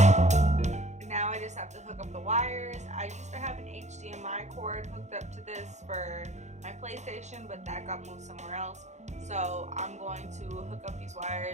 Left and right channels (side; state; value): left; late; 0.33 ms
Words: Have to hook up the wires. I used to have an HDMI cord hooked up to this for my PlayStation, but that got moved somewhere else. So I'm going to hook up these